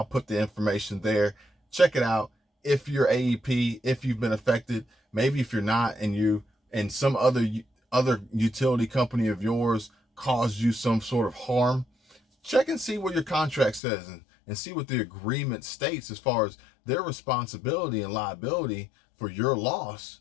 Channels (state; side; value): drops out; right; at 13.8 s